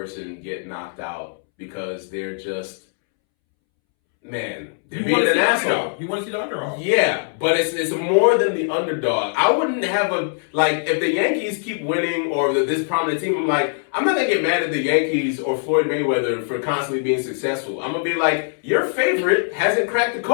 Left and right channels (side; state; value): right; silent; 65 dB below the other